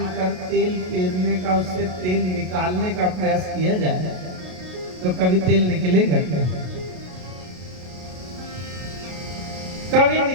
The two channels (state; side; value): late; left; 33 ms